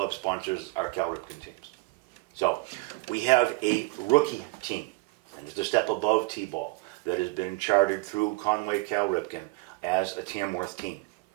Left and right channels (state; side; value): quieter; left; 23.5 dB